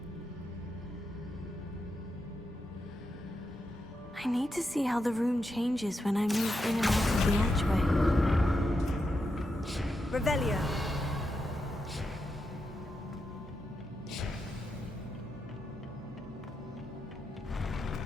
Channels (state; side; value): normal; both; correlation 0.85